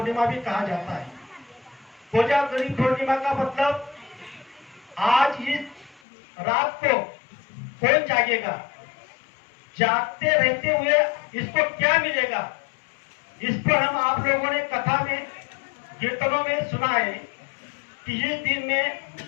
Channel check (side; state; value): right; drops out; at 6.0 s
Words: भी कहा जाता है। कोजागिरी पूर्णिमा का मतलब आज इस रात को कौन जागेगा, जागते रहते हुए इसको क्या मिलेगा, इस पर हम आप लोगों ने कथा में, कीर्तनों में सुना है कि इस दिन में